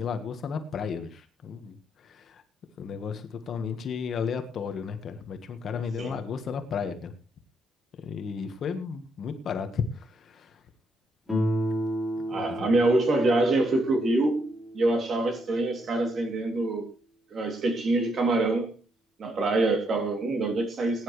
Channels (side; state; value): both; normal; correlation 0.75